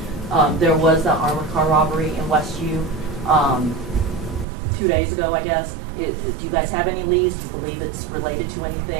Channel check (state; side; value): drops out; left; at 4.5 s